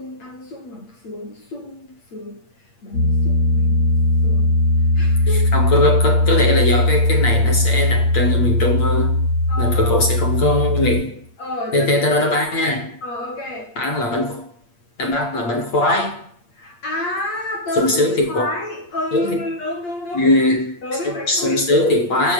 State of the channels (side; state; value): right; late; 8.6 ms